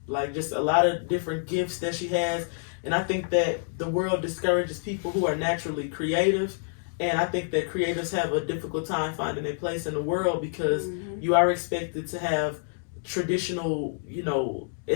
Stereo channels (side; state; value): right; silent; digital silence